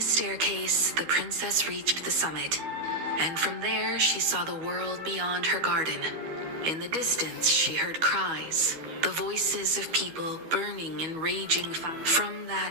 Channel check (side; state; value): left; late; 12 ms